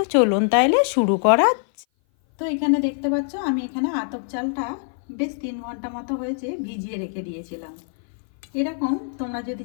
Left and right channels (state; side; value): silent; right; 57 dB below the other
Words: চলুন তাইলে শুরু করা। তো এখানে দেখতে পাচ্ছ, আমি এখানে আতপ চালটা বেশ 3 ঘন্টা মতো হয়েছে ভিজিয়ে রেখে দিয়েছিলাম। এরকম তোমরা যদি